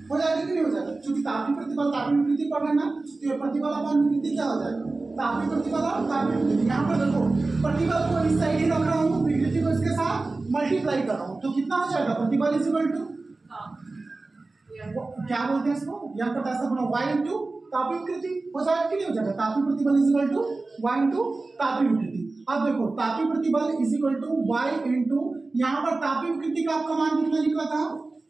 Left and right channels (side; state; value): left; quieter; 3.4 dB